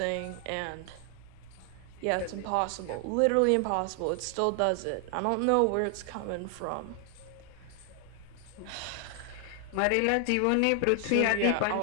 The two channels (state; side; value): different; both; correlation 0.00